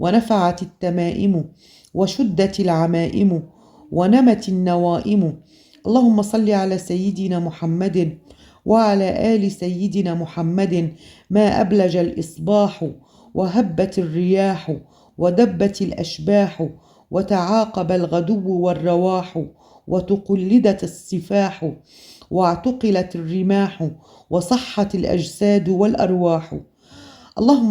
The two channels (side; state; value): both; identical; correlation 1.00